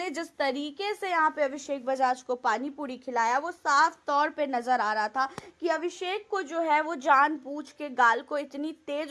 जिस तरीके से यहाँ पे अभिषेक बजाज को पानी पूरी खिलाया वो साफ तौर पे नजर आ रहा था कि अभिषेक को जो है वो जानबूझ के गाल को इतनी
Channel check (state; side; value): identical; both; correlation 1.00